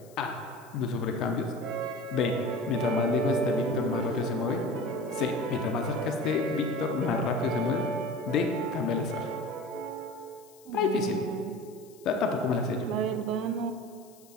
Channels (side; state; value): left; noise; hiss, 26 dB below the sound